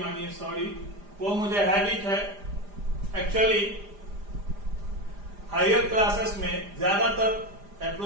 सॉरी, वो मुझे हैबिट है। एक्चुअली हायर क्लासेस में ज्यादातर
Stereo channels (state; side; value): late; left; 4.9 ms